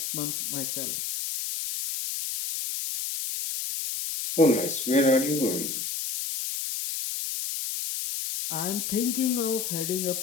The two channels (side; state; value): left; noise; hiss, 3 dB below the sound